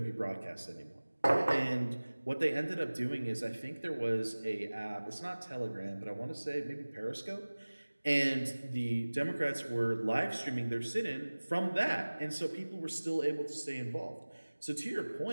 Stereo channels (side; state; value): both; inverted; correlation -1.00